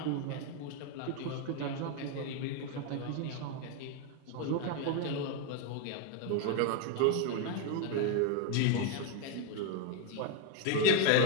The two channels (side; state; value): both; different; correlation 0.01